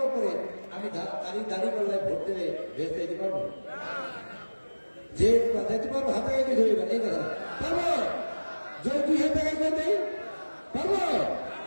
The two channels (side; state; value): both; inverted; correlation -1.00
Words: পরে আমি দাড়ি পাল্লায় ভোট দিলে ভেস্ট দিতে পারবো? যে দিতে পারবো, হাতে গাইতে ধরবেন এই কথা পারবো? যদি 2,000 টাকা করে দেয় পারবো?